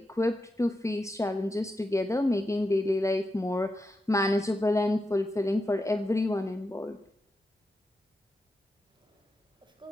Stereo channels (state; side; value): normal; both; correlation 0.88